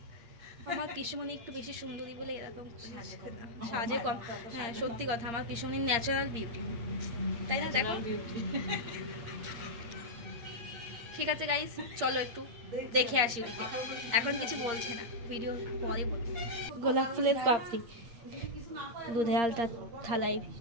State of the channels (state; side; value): late; left; 8.6 ms